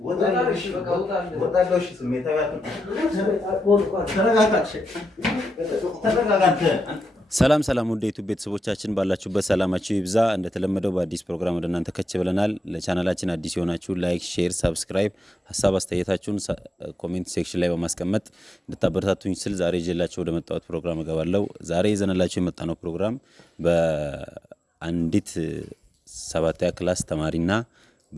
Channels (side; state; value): both; normal; correlation 0.87